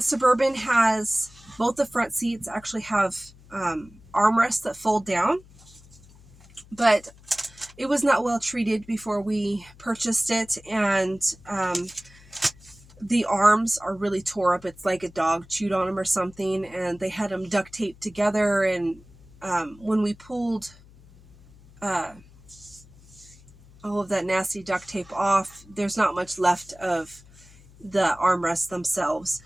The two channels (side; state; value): left; noise; hum, 24 dB below the sound